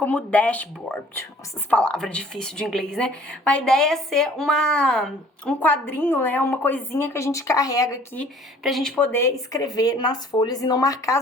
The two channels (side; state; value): both; normal; correlation 0.54